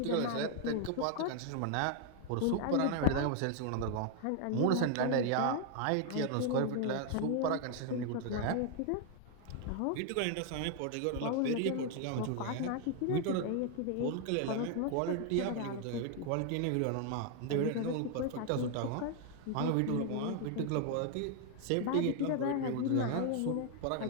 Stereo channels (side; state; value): both; different; correlation 0.00